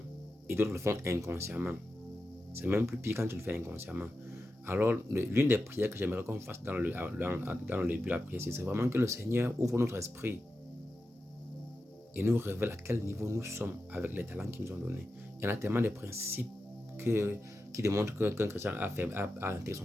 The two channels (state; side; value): normal; both; correlation 0.91